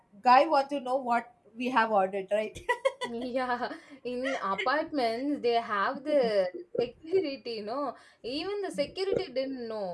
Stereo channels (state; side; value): identical; both; correlation 1.00